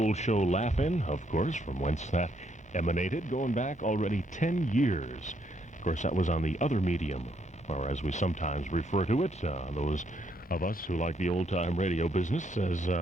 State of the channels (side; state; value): both; normal; correlation 0.73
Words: show Laugh-In, of course, from whence that emanated, going back already 10 years. Of course, that was on the other medium, or as we sometimes refer to it, those of us who like the old-time radio business, as